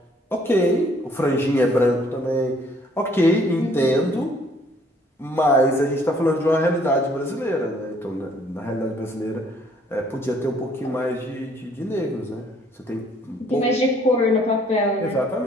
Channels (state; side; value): normal; both; correlation 0.62